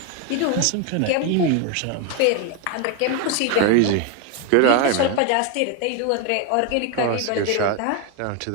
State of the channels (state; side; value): different; both; correlation 0.01